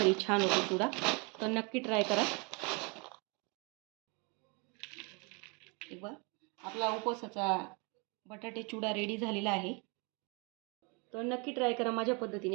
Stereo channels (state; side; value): quieter; left; 31.5 dB